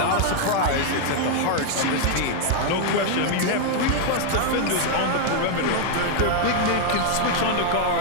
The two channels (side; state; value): both; different; correlation 0.00